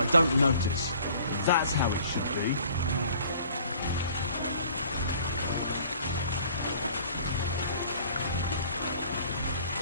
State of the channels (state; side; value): inverted; both; correlation -0.53